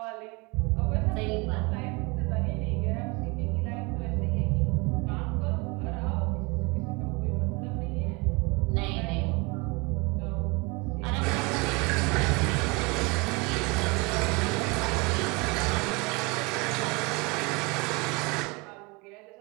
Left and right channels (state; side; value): quieter; left; 27.6 dB